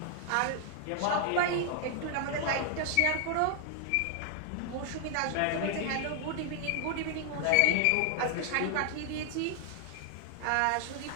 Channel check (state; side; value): different; both; correlation 0.00